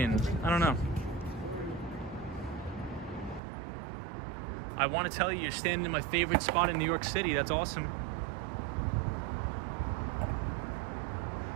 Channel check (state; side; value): drops out; left; at 3.4 s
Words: I don't know. I want to tell you, you're standing in my favorite spot in New York City. That's awesome.